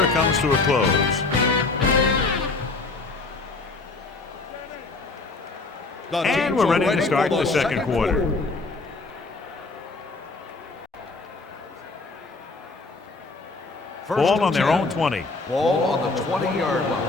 comes to a close. And we're ready to start the second quarter. Ball on their own 20. Ball on the 20-yard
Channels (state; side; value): quieter; right; 3.6 dB